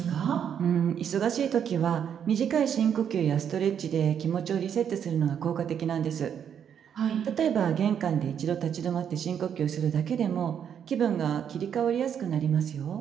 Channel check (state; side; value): quieter; left; 8.4 dB